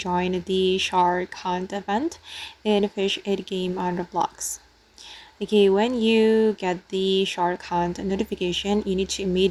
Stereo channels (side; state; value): both; identical; correlation 1.00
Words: the shark hunt event in Fish 8 game on Roblox. Okay, when you get the shark hunt notification, you need to